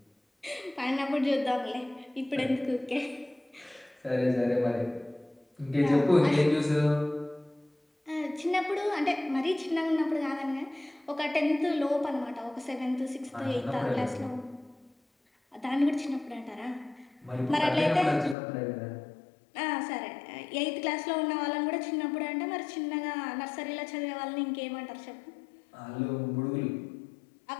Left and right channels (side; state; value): right; drops out; at 18.4 s